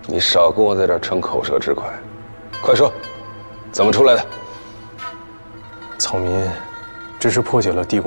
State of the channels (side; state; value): both; inverted; correlation -1.00